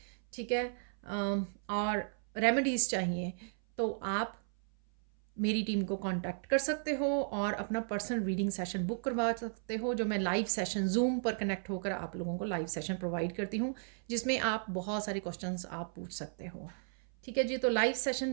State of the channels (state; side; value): silent; left; 55 dB below the other